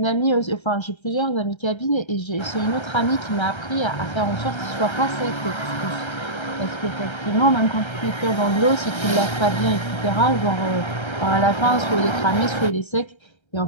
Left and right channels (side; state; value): right; late; 1.3 ms